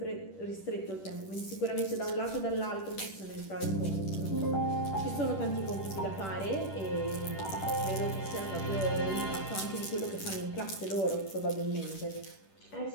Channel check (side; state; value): right; late; 10 ms